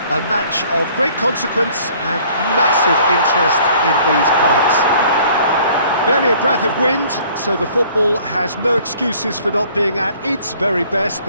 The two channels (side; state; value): both; inverted; correlation -0.55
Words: a match of great consequence and massive interest in these parts. Barely a breath of wind, so the football has no excuses for not being at its very best.